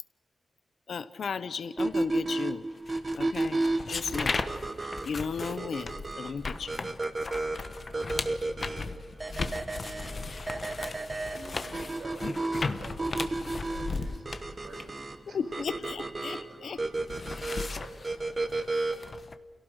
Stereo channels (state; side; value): normal; both; correlation 0.92